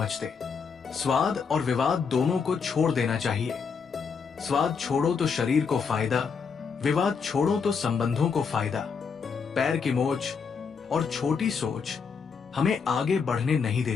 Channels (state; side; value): quieter; right; 5.8 dB